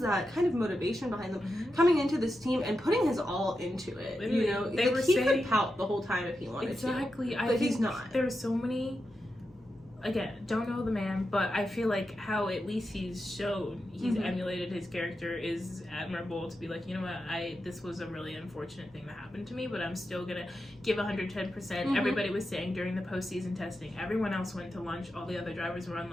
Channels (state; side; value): normal; both; correlation 0.88